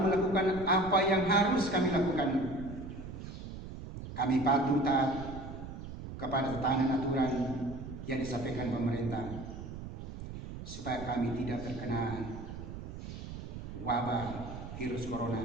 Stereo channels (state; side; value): noise; right; rumble, 10 dB below the sound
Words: apa yang harus kami lakukan. Kami patuh taat kepada tatanan aturan yang disampaikan pemerintah, supaya kami tidak terkena wabah virus corona.